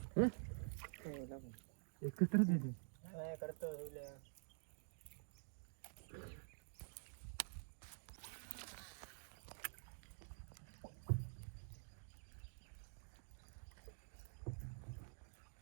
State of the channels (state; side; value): silent; left; digital silence